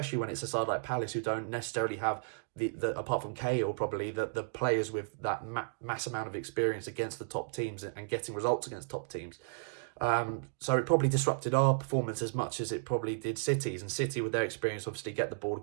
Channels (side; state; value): left; silent; digital silence